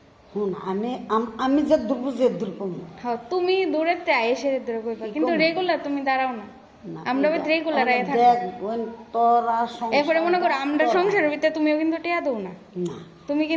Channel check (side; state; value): both; identical; correlation 1.00